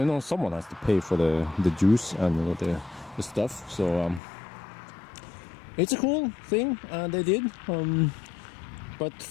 know, someone has to pay for the juice and you know, the stuff. So it's a cool thing they did. But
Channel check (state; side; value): drops out; right; at 4.2 s